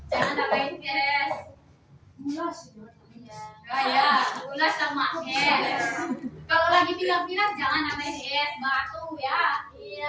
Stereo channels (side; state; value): both; identical; correlation 1.00